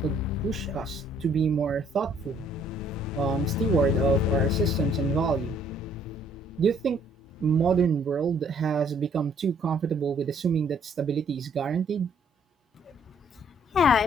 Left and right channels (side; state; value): both; normal; correlation 0.63